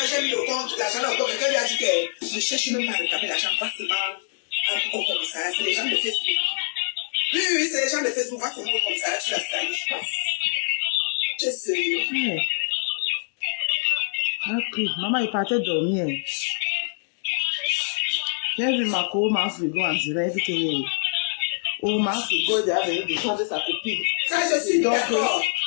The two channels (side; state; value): right; silent; digital silence